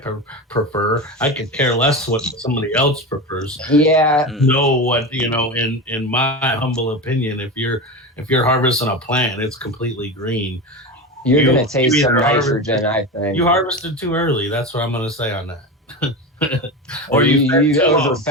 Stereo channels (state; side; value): normal; both; correlation 0.23